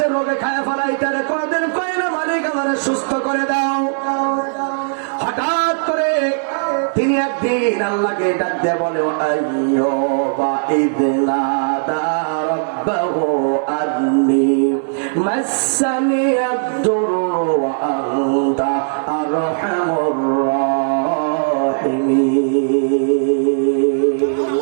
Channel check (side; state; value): left; silent; 66 dB below the other